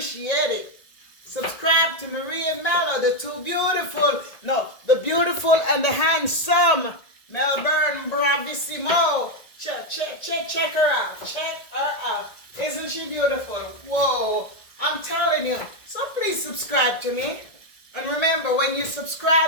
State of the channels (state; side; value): late; right; 1.8 ms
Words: it. Subscribe to Marie and Mello, the beautiful and the handsome Melbourne Bravissimo. Check her out. Check her out. Isn't she beautiful? Whoa. I'm telling you. So please subscribe to me. And remember, when you